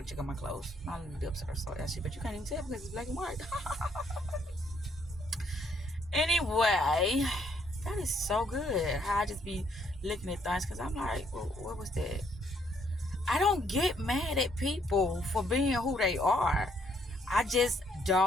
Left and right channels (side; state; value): both; normal; correlation 0.69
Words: check on my clothes. My lips are so ashy, but you can't even tell because it's black and white. Anyway, that is so good how I just be looking at things, because I'm like, well, what was that? I don't get mad at people for being who they are. I just